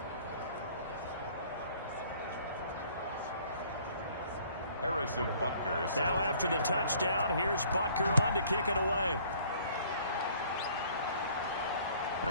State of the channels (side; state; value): both; inverted; correlation -0.57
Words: Harrison Butker. Now after the touchdown, here's Butker on to kick it away.